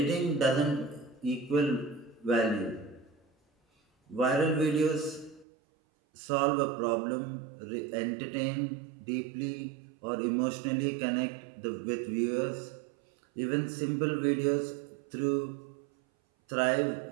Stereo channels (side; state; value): left; drops out; at 5.5 s